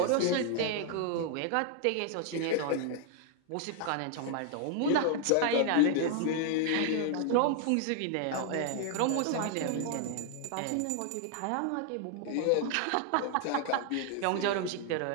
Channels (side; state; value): both; different; correlation 0.00